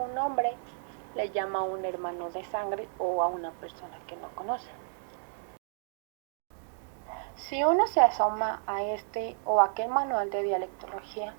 hombre le llama a un hermano de sangre o a una persona que no conoce. Si uno se asoma a este o aquel manual de dialectología,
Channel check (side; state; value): left; silent; digital silence